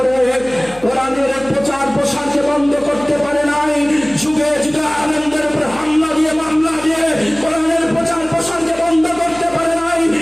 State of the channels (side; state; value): left; noise; hum, 20 dB below the sound